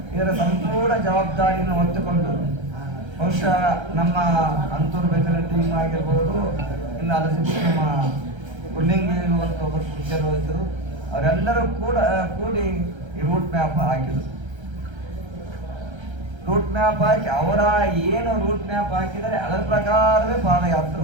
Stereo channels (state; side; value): late; left; 1.3 ms